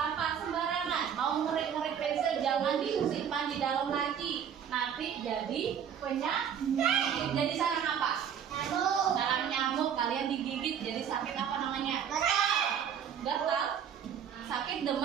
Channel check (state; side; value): quieter; left; 8.3 dB